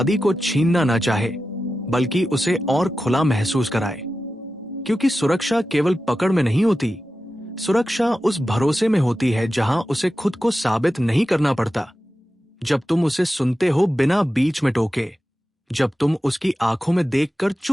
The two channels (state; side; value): normal; both; correlation 0.92